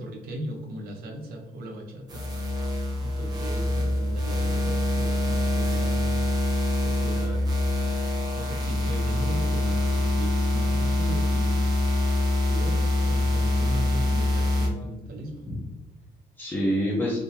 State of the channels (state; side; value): normal; both; correlation 0.87